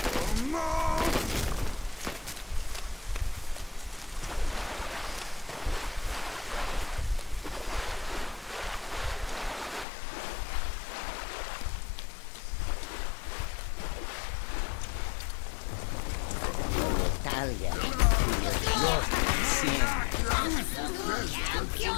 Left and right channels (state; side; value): drops out; right; at 9.9 s